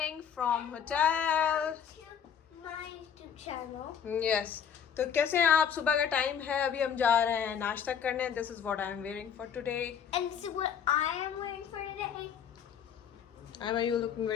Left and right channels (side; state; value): right; quieter; 8.0 dB